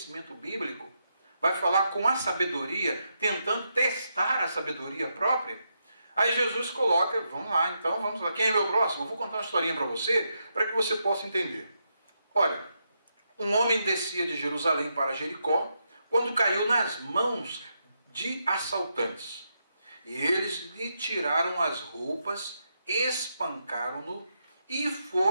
bíblico. Vai falar com a sabedoria, tentando testar a sabedoria própria. Aí Jesus coloca, vamos lá, quem é meu próximo? Eu vou contar uma historinha para você possa entender. Olha, um homem descia de Jerusalém para Jericó, quando caiu nas mãos de assaltantes. E eles lhe tiraram as roupas, espancaram-no e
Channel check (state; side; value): inverted; both; correlation -0.82